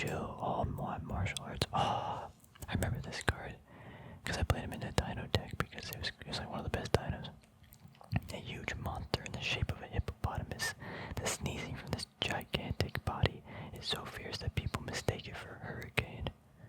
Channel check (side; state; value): both; identical; correlation 1.00